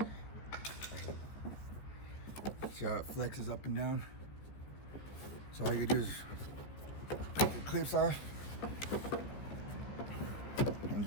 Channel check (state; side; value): late; right; 15 ms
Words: See how it flexes up and down? So all you do is take the clips off and